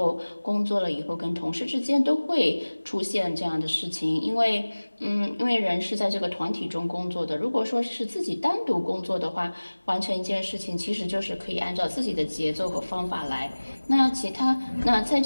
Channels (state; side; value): inverted; both; correlation -1.00